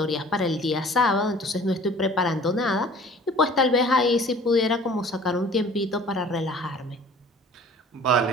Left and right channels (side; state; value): both; normal; correlation 0.48